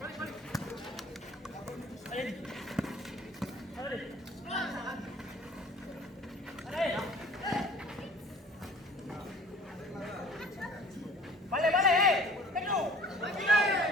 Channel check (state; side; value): normal; both; correlation 0.49